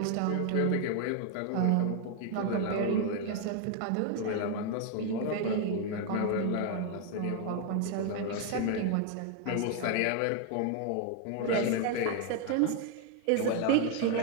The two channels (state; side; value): different; both; correlation 0.00